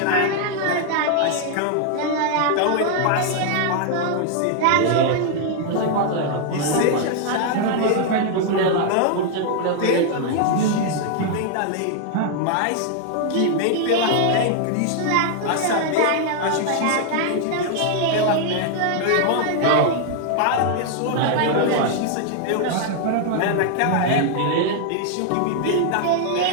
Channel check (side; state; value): both; different; correlation 0.00